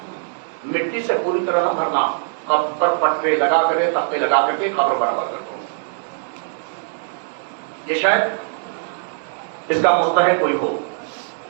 مٹی سے پوری طرح نہ بھرنا، قبر پر پٹرے لگا کر تختے لگا کر کے قبر برابر کر دو. یہ شاید اس کا مستحق کوئی ہو.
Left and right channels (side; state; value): left; silent; digital silence